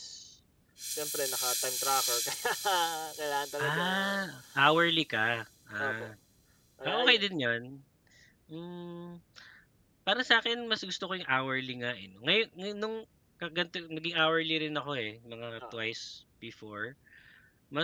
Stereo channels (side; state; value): both; identical; correlation 1.00